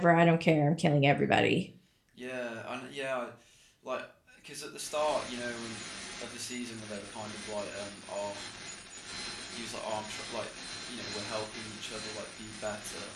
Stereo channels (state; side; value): identical; both; correlation 1.00